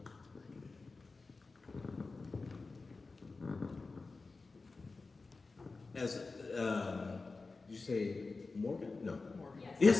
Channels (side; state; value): right; quieter; 3.9 dB